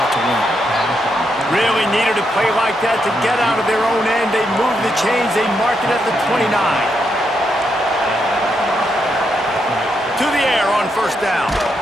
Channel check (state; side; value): normal; both; correlation 0.80